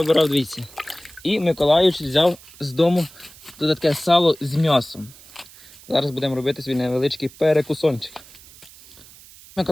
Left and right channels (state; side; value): noise; right; hiss, 22 dB below the sound